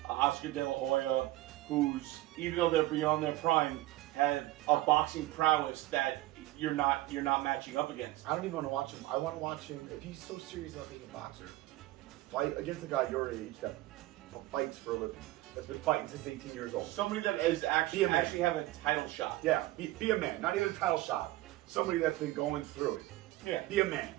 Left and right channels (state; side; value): quieter; left; 17.5 dB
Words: Oscar De La Hoya, who's, even though they're beyond their prime, have a boxing prowess that you're not matching up against. I don't even want to watch him. I want to watch him, if he's so serious about being a boxer, fight against a guy your age that fights for a living, that's been fighting since 18 years old. Somebody that is actually have a title shot. Yeah, be a man. Not even a title shot. Somebody that's been going through it. Yeah. Be a man,